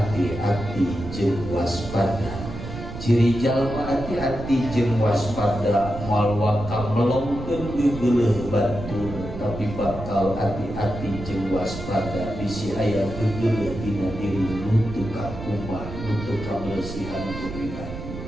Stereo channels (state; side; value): noise; right; rumble, 9 dB below the sound